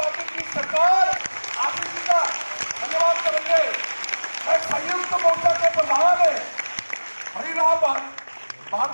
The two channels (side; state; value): both; inverted; correlation -1.00